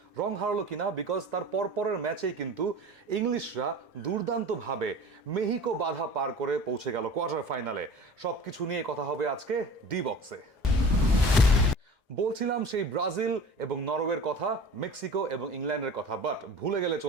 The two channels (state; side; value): normal; both; correlation 0.39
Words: হারালো কিনা, বিকজ তার পরপরের ম্যাচেই কিন্তু ইংলিশরা দুর্দান্তভাবে মেহিকো বাধা পার করে পৌঁছে গেল কোয়ার্টার ফাইনালে। সবকিছু নিয়ে কথা হবে আজকে ডি বক্সে। বলছিলাম সেই ব্রাজিল এবং নরওয়ের কথা, মেক্সিকো এবং ইংল্যান্ডের কথা, বাট ভুলে গেলে